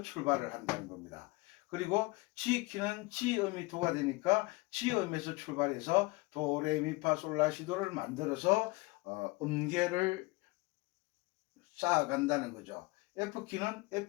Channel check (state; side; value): quieter; right; 23.6 dB